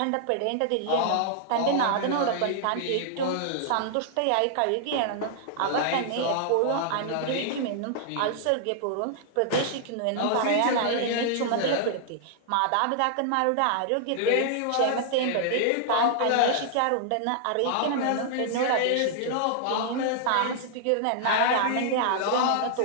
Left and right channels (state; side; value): different; both; correlation -0.01